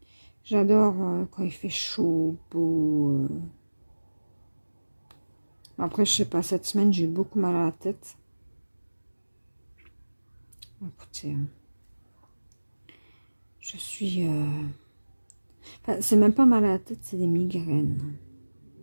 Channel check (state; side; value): inverted; both; correlation -1.00